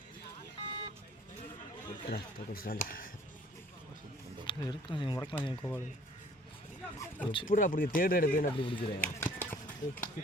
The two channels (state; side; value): normal; both; correlation 0.56